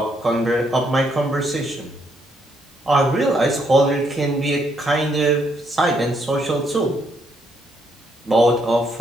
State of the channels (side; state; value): both; normal; correlation 0.73